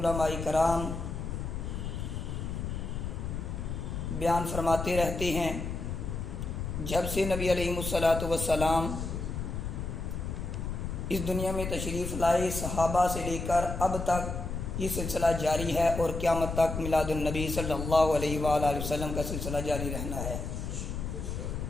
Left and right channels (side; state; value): left; noise; rumble, 4 dB below the sound